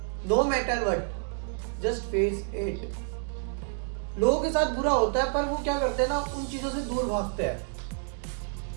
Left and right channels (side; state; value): left; silent; 59 dB below the other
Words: no matter what, just face it. लोगों के साथ बुरा होता है पर वो क्या करते हैं ना, उन चीजों से दूर भागते हैं।